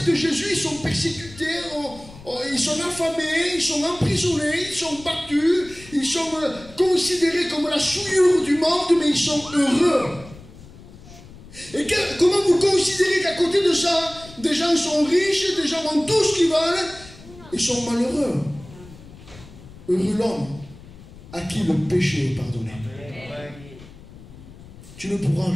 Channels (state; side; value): noise; left; rumble, 19 dB below the sound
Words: Jésus, ils sont persécutés, ils sont affamés, ils sont emprisonnés, ils sont battus, ils sont considérés comme la souillure du monde, mais ils sont heureux. Et comment vous considérez qu'à côté de ça, des gens sont riches, des gens ont tout ce qu'ils veulent, ils sont malheureux? Heureux l'homme à qui le péché est pardonné. Tu ne pourras